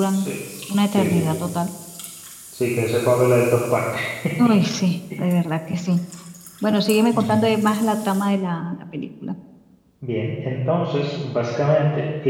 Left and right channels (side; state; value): both; identical; correlation 1.00